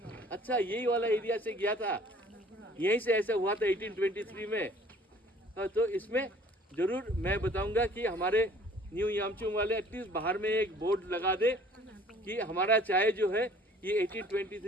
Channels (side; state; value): both; normal; correlation 0.53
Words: अच्छा, यही वाला एरिया से गया था, यहीं से ऐसा हुआ था 1823 में। तो इसमें ज़रूर मैं बताऊंगा कि हमारे न्यू यामचुंग वाले एटलीस्ट बाहर में एक बोर्ड लगा दे कि हमारा चाय जो है ये